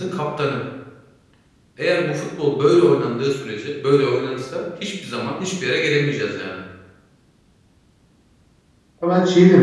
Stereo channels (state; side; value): identical; both; correlation 1.00